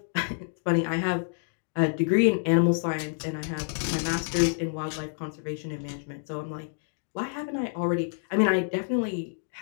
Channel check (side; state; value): right; silent; digital silence